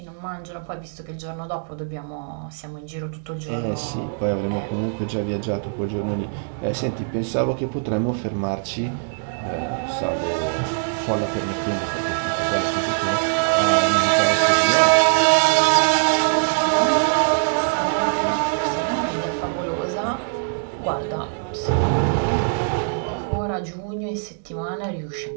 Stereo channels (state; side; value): silent; left; digital silence